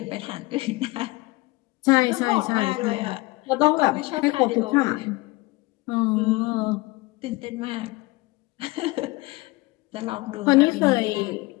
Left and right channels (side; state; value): right; quieter; 22.5 dB